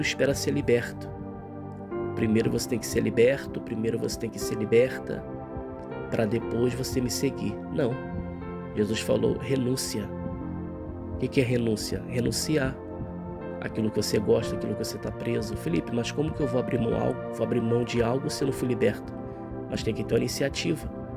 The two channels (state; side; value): identical; both; correlation 1.00